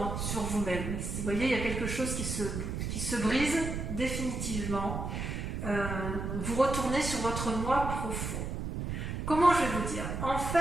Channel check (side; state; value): right; noise; rumble, 4 dB below the sound